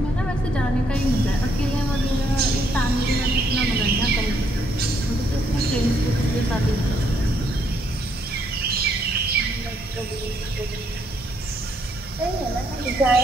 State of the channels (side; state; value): both; normal; correlation 0.72